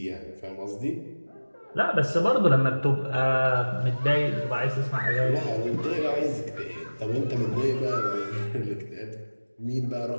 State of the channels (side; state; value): both; inverted; correlation -1.00